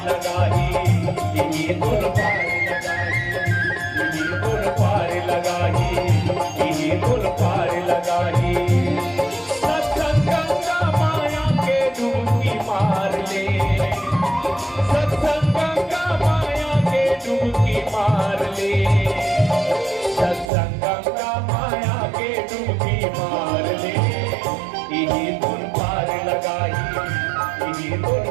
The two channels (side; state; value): left; drops out; at 20.5 s